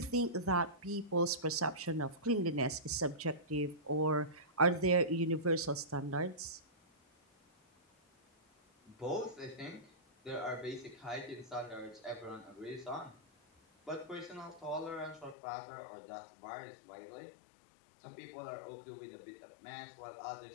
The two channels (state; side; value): drops out; right; at 15.4 s